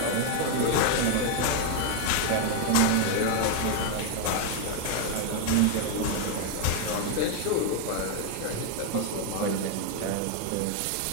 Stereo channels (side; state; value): both; different; correlation 0.01